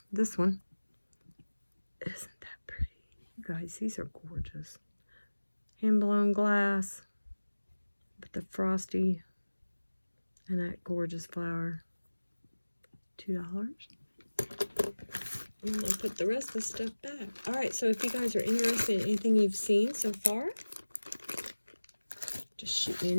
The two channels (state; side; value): inverted; both; correlation -1.00